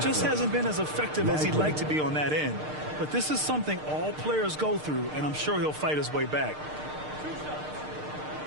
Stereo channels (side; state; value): left; late; 6.6 ms